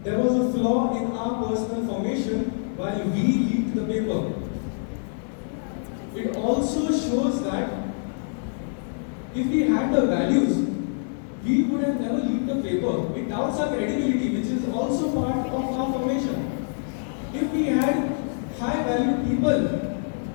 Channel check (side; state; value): right; silent; 61 dB below the other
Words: there was a flaw in our personal formation while we leaked the paper. It also shows that if we had the values, we would have never leaked the paper. It doubts our credibility, which is also part of our formation. If we had high valued people